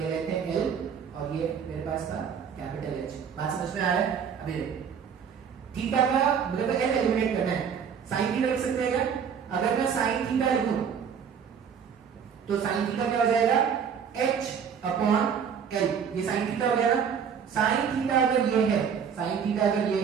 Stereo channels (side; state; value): left; quieter; 7.3 dB